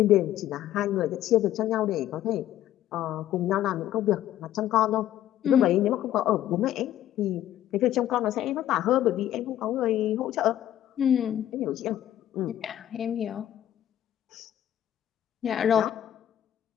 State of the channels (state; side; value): quieter; right; 12.2 dB